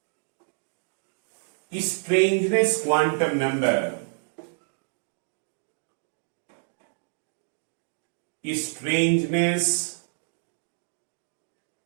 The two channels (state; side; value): silent; left; 59 dB below the other